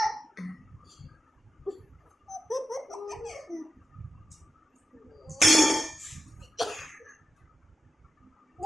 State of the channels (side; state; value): both; normal; correlation 0.92